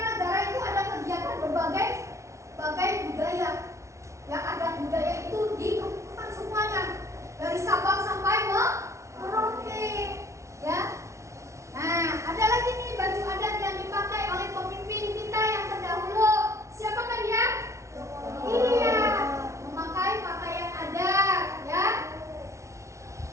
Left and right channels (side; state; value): left; late; 0.14 ms